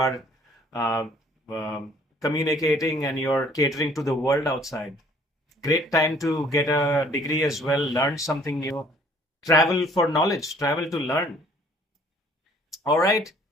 communicating and you're catering to the world outside. Great time to get a degree as well, learn something new, travel for knowledge, travel to learn. All right.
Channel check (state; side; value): normal; both; correlation 0.57